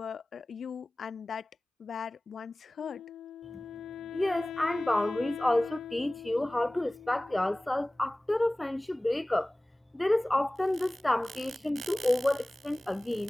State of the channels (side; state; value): both; normal; correlation 0.98